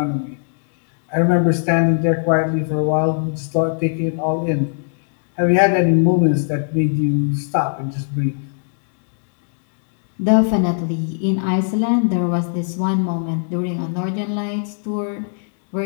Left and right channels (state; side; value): silent; right; digital silence